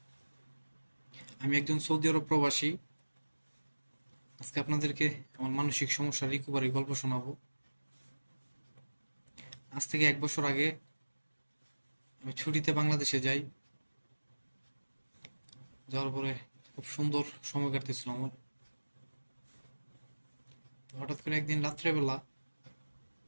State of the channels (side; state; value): both; inverted; correlation -1.00